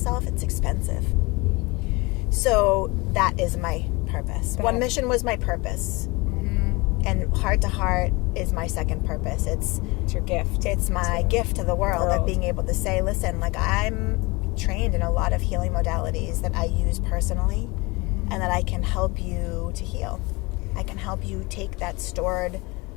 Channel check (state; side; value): quieter; right; 24.9 dB